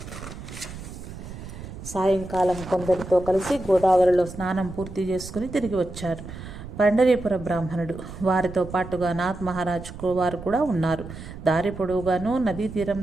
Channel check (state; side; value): noise; right; rumble, 12 dB below the sound